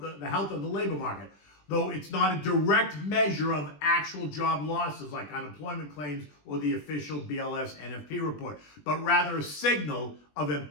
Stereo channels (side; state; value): right; late; 20 ms